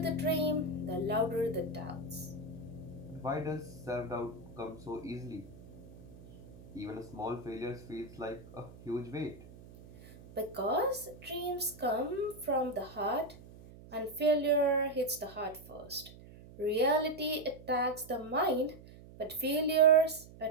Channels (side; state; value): right; noise; hum, 18 dB below the sound